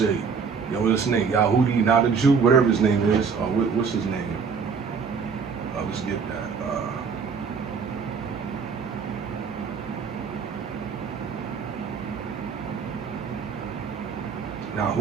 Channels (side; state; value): left; quieter; 5.8 dB